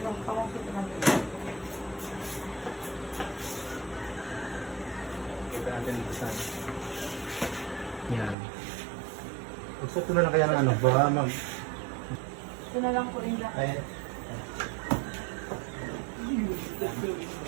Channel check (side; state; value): left; drops out; at 8.3 s